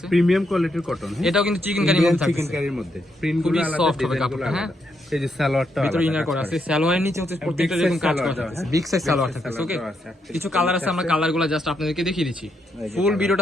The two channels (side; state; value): both; normal; correlation 0.79